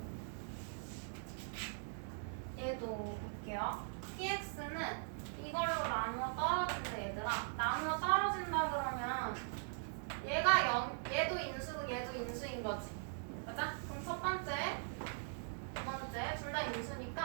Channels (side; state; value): left; silent; digital silence